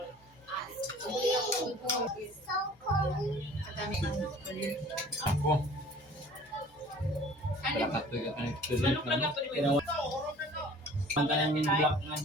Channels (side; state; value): both; normal; correlation 0.48